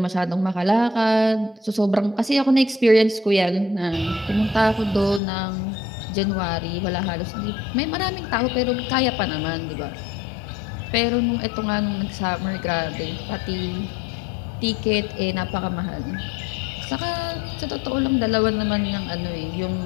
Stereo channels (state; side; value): drops out; right; at 5.2 s